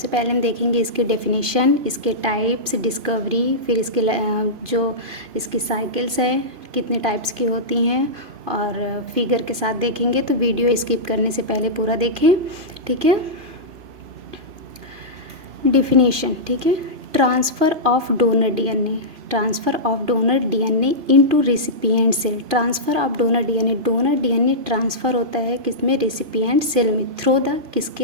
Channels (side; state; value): left; late; 2.4 ms